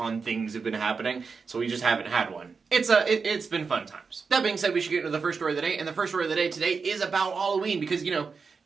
things have been happening, so we just haven't had one. It's been fun times. That being said, we should get into the first story of the day, and the first story of the day today is about Halloween, because,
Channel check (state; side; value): quieter; left; 5.1 dB